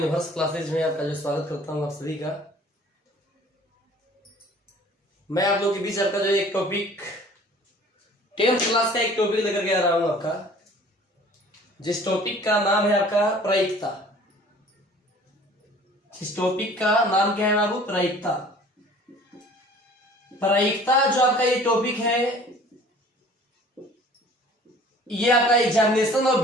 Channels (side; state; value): both; normal; correlation 0.50